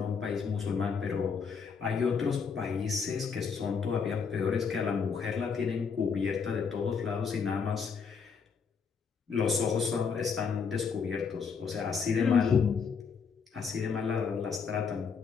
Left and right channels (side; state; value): right; quieter; 5.9 dB